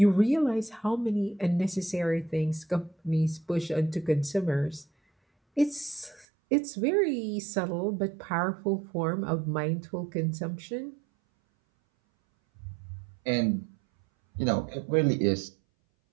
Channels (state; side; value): drops out; left; at 6.2 s